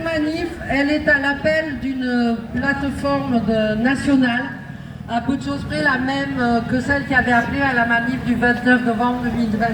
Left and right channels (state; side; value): identical; both; correlation 1.00